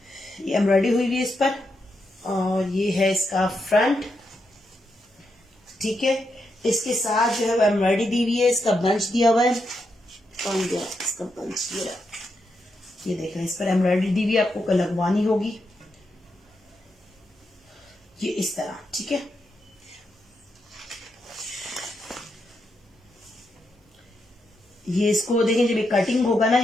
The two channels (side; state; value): both; normal; correlation 0.83